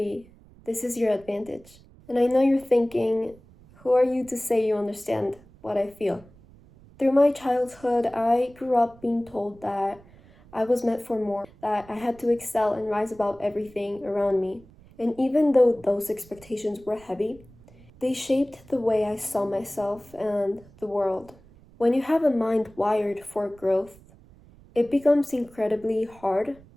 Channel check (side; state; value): right; noise; rumble, 25 dB below the sound